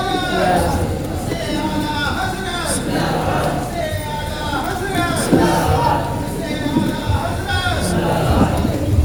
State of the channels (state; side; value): identical; both; correlation 1.00